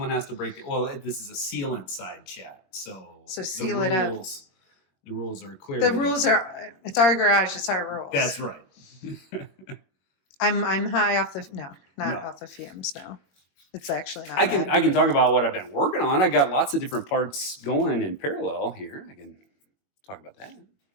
has to break it. Well, this is a sealant side chat, so seal it up. The rules are clear. The rules are. It's our garage. It's our rules. That's right. I'm high off the off the fumes. No. It's actually not. I can talk about what I've been working on. I got lots of different parts going in parallel here. I can talk about that.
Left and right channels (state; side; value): late; right; 21 ms